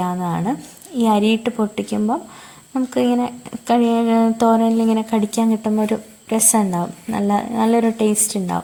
ഈ അരിയിട്ട് പൊട്ടിക്കുമ്പം നമുക്ക് ഇങ്ങനെ തോരനിലിങ്ങനെ കടിക്കാൻ കിട്ടുമ്പോൾ ഒരു രസം ഉണ്ടാവും, നല്ലൊരു ടേസ്റ്റ്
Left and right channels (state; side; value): identical; both; correlation 1.00